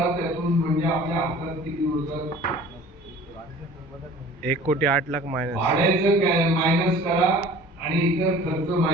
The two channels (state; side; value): normal; both; correlation 0.46